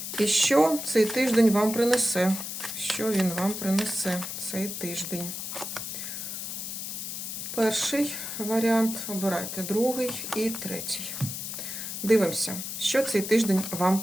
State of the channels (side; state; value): left; noise; hiss, 6 dB below the sound